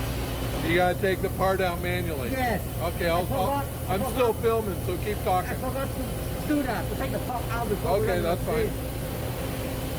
You gotta take the part out manually. Yes. Okay, I'm still filming, so keep talking. I forgot to do that, to take the part out before. Okay, that's fine.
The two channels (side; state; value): both; identical; correlation 1.00